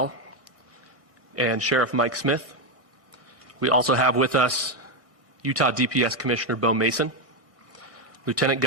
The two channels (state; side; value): late; left; 1.6 ms